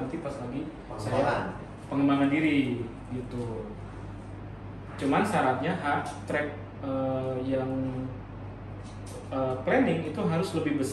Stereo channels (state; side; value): identical; both; correlation 1.00